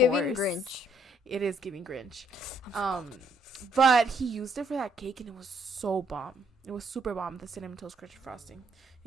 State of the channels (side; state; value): both; normal; correlation 0.68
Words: Grinch. It is giving Grinch. But he used it for that cake, and it was so bomb. It was super bomb, the cinnamon toast crunch frosting.